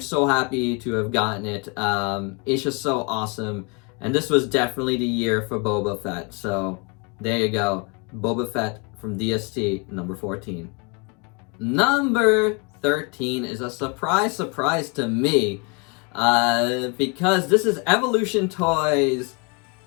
happy to have gotten it. It's just so awesome, and this was definitely the year for Boba Fett. So, there you go. Boba Fett from DST, number 14. Number 13 is a surprise to me, because this is Evolution Toys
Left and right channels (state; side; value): quieter; right; 31.8 dB